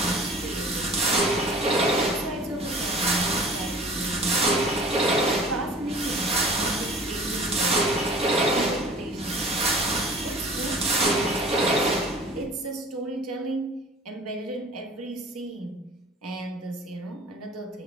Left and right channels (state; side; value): normal; both; correlation 0.45